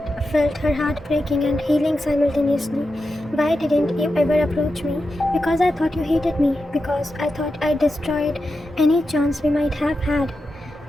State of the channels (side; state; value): both; normal; correlation 0.90